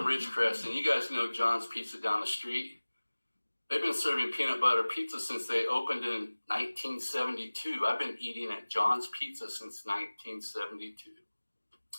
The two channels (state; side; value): inverted; both; correlation -1.00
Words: Ridgecrest, and you guys know John's Pizza down the street. They've been serving peanut butter pizza since they opened in 1972. I've been eating at John's Pizza since 1972.